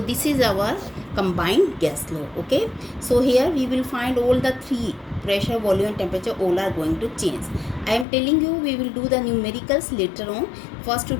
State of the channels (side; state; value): right; drops out; at 8.1 s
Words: is our combined gas law. Okay, so here we will find all the three: pressure, volume and temperature, all are going to change. I am telling you we will do the numericals later on. First to